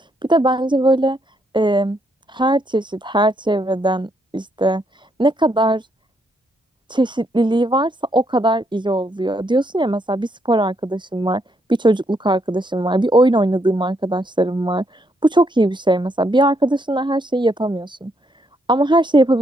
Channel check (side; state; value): both; normal; correlation 0.75